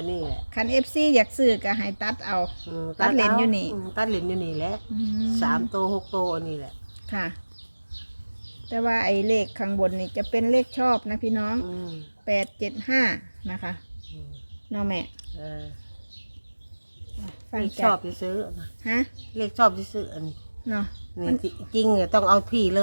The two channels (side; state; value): both; inverted; correlation -1.00